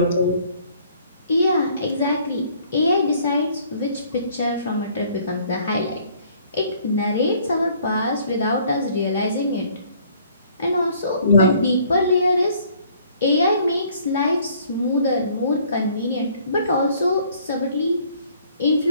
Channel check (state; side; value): inverted; both; correlation -0.59